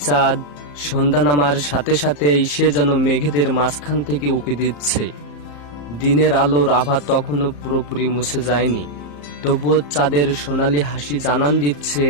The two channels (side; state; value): right; late; 34 ms